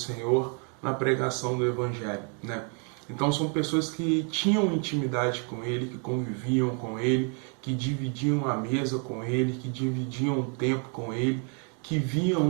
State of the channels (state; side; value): quieter; left; 39.0 dB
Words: na pregação do Evangelho, né? Então são pessoas que tinham intimidade com ele, que conviviam com ele, que dividiam a mesa com ele, que dividiam o tempo com ele, que viam